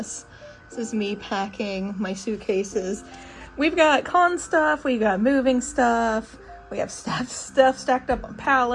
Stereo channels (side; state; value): both; identical; correlation 1.00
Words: This is me packing my suitcases. We've got con stuff, we've got moving stuff, we have stuff stacked up on